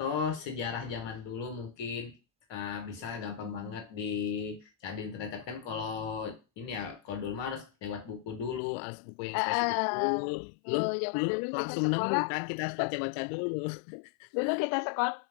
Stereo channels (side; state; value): right; drops out; at 8.6 s